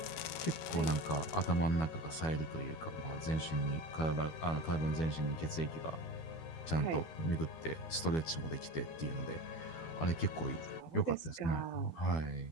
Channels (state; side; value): late; right; 12 ms